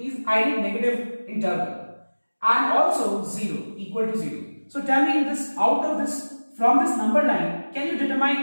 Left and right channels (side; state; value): both; inverted; correlation -1.00